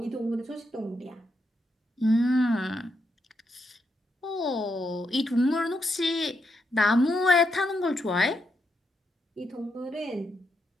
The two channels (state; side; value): normal; both; correlation 0.81